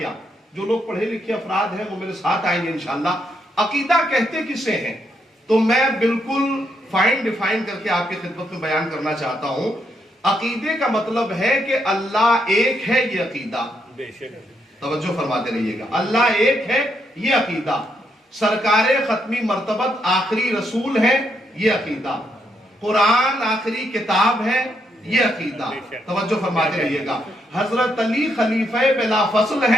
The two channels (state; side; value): normal; both; correlation 0.78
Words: جو لوگ پڑھے لکھے افراد ہیں وہ میرے ساتھ آئیں گے انشاءاللہ. عقیدہ کہتے کسے ہیں؟ تو میں بالکل فائن ڈیفائن کر کے آپ کی خدمت میں بیان کرنا چاہتا ہوں. عقیدے کا مطلب ہے کہ اللہ ایک ہے، یہ عقیدہ. توجہ فرماتے رہیے گا. اللہ ایک ہے یہ عقیدہ. سرکار ختمی مرتبت آخری رسول ہے یہ عقیدہ. قرآن آخری کتاب ہے یہ عقیدہ. توجہ فرماتے رہیے گا. حضرت علی خلیفہ بلا فصل